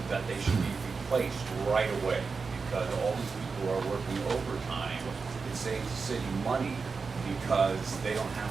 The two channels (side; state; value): left; quieter; 4.8 dB